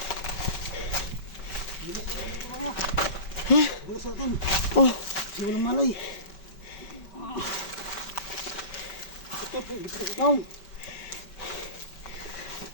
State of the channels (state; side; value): late; right; 5.2 ms